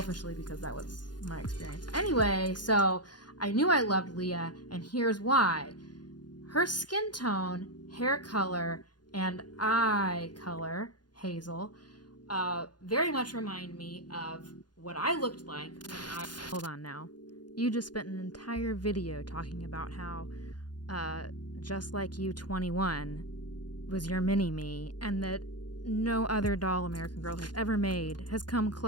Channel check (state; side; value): late; right; 0.70 ms